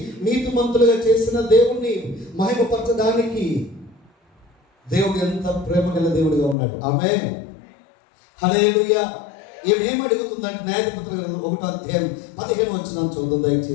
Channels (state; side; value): drops out; right; at 6.6 s